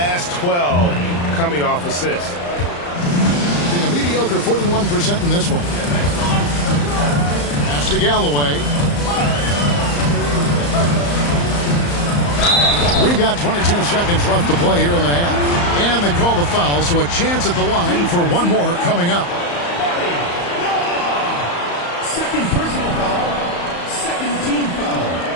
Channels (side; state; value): right; late; 35 ms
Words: 12 coming off assists. A mediocre 41% in this one. Pass to Galloway. We've got 22 seconds left to play here in the half. And they call the foul, so a chance at the line for one more coming up. Second personal foul. Second team foul.